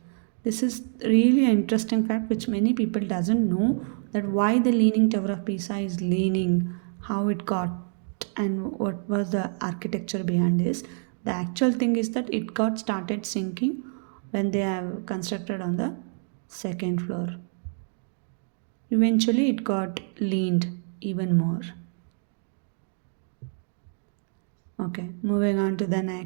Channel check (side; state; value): left; silent; 55 dB below the other